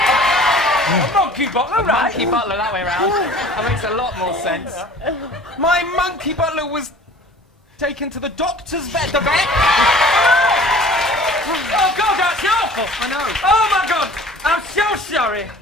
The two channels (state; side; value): normal; both; correlation 0.46